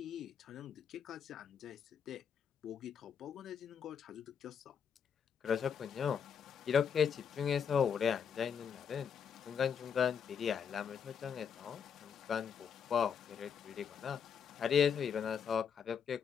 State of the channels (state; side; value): quieter; right; 7.3 dB